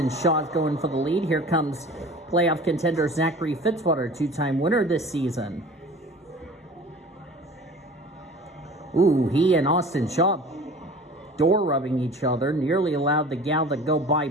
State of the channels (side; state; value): both; normal; correlation 0.43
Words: Shaw's going for the lead, here comes playoff contender Zachary Fitzwater, 2-time winner this season. Ooh, he and Austin Shaw door rubbing each other, nearly allowed the gal to go by